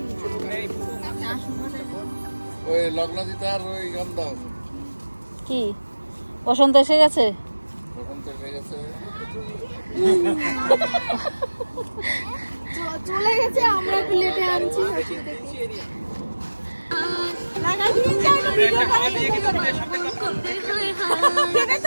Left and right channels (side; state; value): both; inverted; correlation -1.00